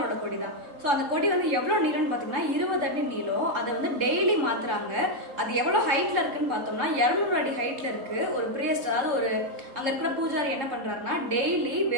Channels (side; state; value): left; late; 3.5 ms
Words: கொடி தான். ஸோ அந்த கொடி வந்து எவ்வளோ நீளம்னு பார்த்தீங்கன்னா 20 அடி நீளம். அதை வந்து டெய்லி மாத்துறாங்க. அது எவ்வளோ ஹைட்ல இருக்குன்னு பார்த்தோம்னா 200 அடி ஹைட்ல இருக்கு. ஒரு பிரியஸ்ட், அதாவது ஒரு அங்கே இருக்கிற பூஜாரி என்ன பண்றாருன்னா, டெய்லி